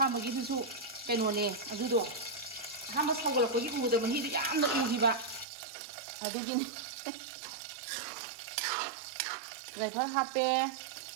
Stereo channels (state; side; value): drops out; left; at 5.5 s